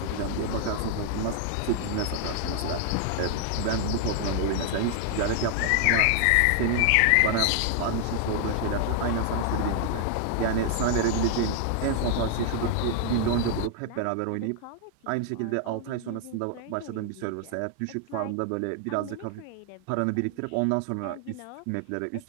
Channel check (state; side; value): different; both; correlation 0.00